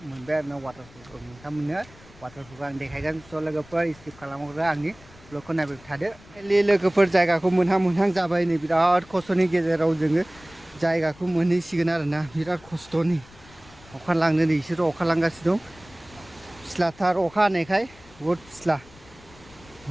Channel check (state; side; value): noise; left; rumble, 23 dB below the sound